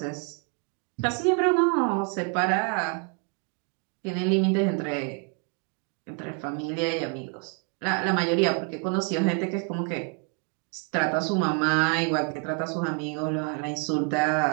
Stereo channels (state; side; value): quieter; left; 37.7 dB